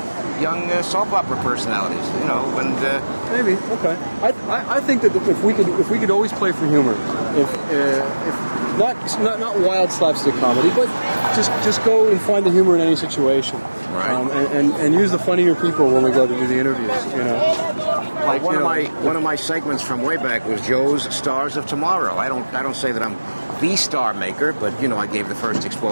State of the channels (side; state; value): both; inverted; correlation -1.00